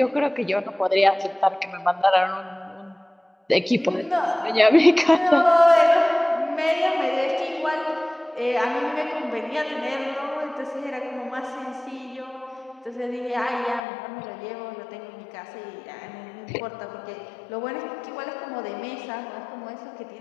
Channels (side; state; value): right; drops out; at 13.8 s